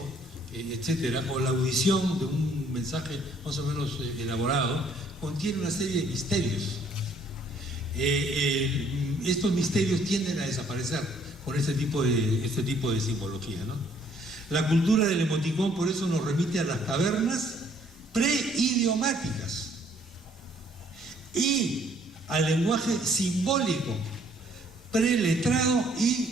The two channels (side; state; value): both; normal; correlation 0.63